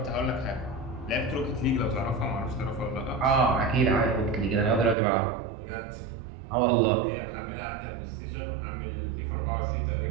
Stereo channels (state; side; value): drops out; left; at 5.0 s